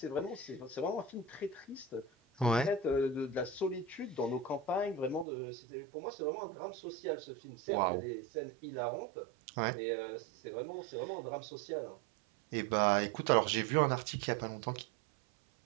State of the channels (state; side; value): drops out; left; at 5.2 s